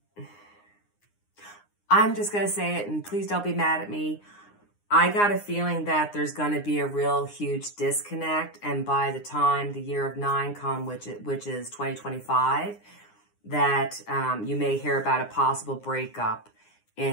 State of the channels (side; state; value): right; late; 9.7 ms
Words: I'm just going to say it, and please don't be mad at me. I got a feeling that there's going to be a real huge disconnect, and by the time the year of 9 comes, which is 2025, that you may hear about a possible breakup